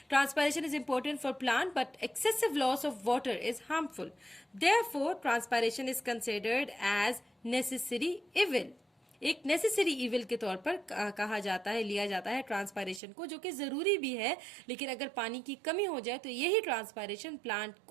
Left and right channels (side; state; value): left; drops out; at 13.0 s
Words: Transpiration is important for plant but excessive loss of water is harmful. Therefore transpiration is considered as necessary evil. एक नेसेसरी इविल के तौर पर कहा जाता है, लिया जाता है ट्रांसपायरेशन को, जो कि जरूरी भी है, लेकिन अगर पानी की कमी हो जाए तो यही ट्रांसपायरेशन प्लांट